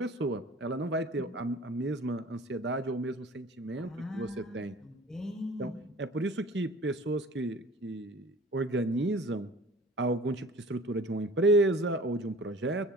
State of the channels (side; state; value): both; normal; correlation 0.45